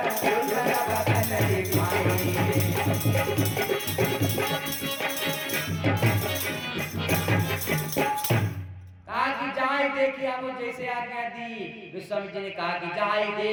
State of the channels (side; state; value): both; identical; correlation 1.00